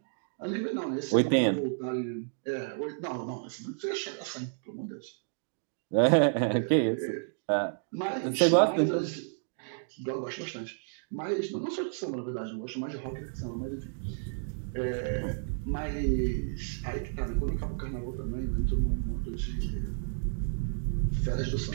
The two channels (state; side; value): silent; left; digital silence